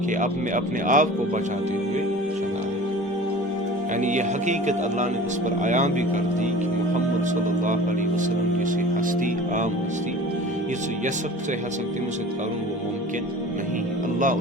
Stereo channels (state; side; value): normal; both; correlation 0.41